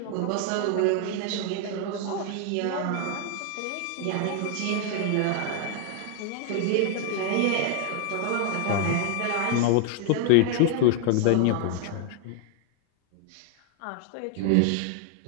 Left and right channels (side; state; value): both; different; correlation 0.00